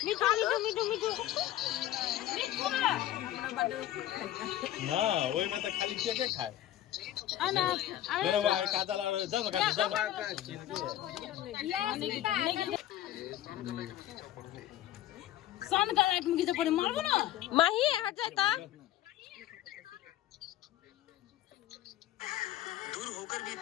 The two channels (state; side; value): quieter; right; 13.2 dB